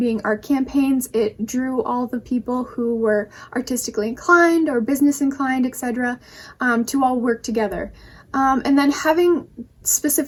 art campaigns, it drew all the people who were artistically inclined or business inclined, etc., to all work together. And then having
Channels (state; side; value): identical; both; correlation 1.00